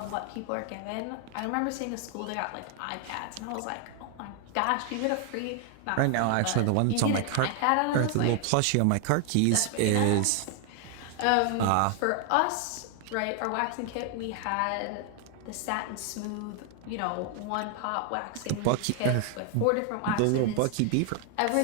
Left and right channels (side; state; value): both; different; correlation 0.00